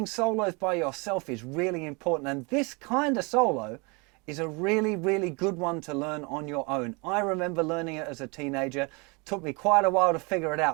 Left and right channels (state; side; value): quieter; left; 29.8 dB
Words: solos by yourself is really important. And this kind of solo is a really, really good one to learn on your own. I remember learning it as a teenager. It took me quite a while to figure it